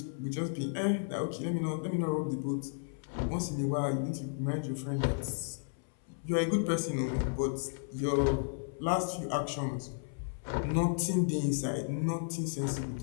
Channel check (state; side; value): silent; right; 55 dB below the other